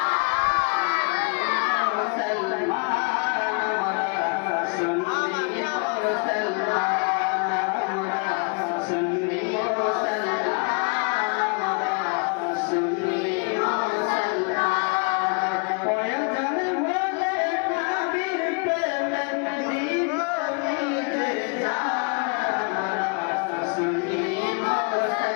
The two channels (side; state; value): right; quieter; 36.3 dB